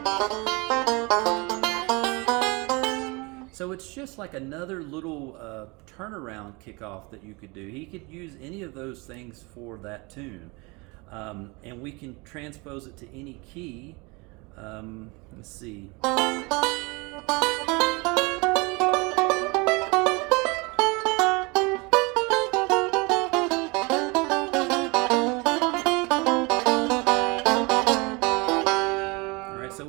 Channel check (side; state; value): left; quieter; 27.0 dB